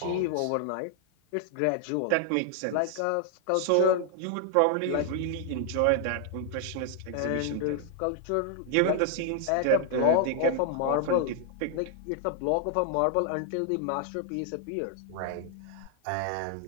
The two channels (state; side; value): different; both; correlation 0.00